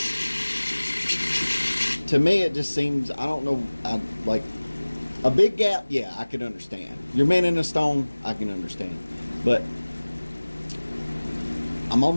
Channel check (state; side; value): inverted; both; correlation -1.00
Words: to me, it just seems, I don't know, like a big gap, yeah, I could understand. You're mending a stone, I can understand. But I'm